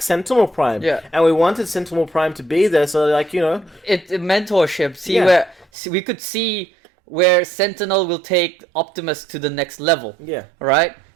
Sentinel Prime. Yeah. And we wanted Sentinel Prime to be there so, like, It mentorship. See, where we could see where Sentinel will take Optimus to the next level. Yeah. Right?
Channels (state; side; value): drops out; left; at 5.7 s